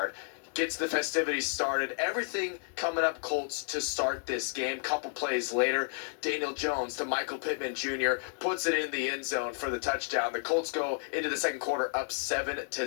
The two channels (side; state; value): right; silent; digital silence